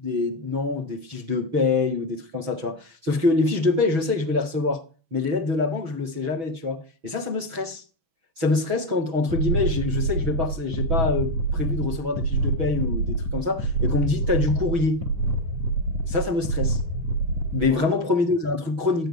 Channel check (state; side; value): late; left; 6.2 ms